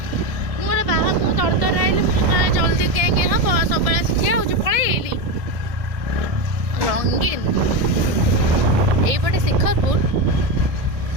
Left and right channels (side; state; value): left; late; 1.7 ms